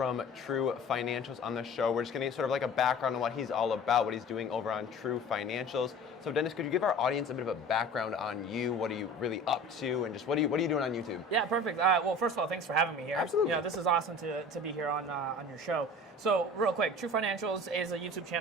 TruFinancials on the show. We're just going to get sort of like a background on what he's all about, what he's doing over on TruFinancials. So, Denis, could you give our audience a bit of a background on you? What are you really up to, and just what are you doing on YouTube? Yeah, perfect. Well, first of all, thanks for having me here. Absolutely. You know, this is awesome to be here on your show. So, real quick, TruFinancials is a YouTube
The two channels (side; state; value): both; normal; correlation 0.41